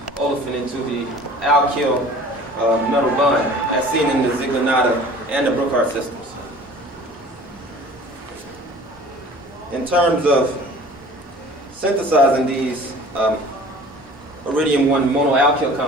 olefin into the alkyl metal bond, as seen in the ZieglerNatta and the Brookhart systems. In terms of synthesizing these iridium-1 monoalkyl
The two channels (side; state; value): both; normal; correlation 0.46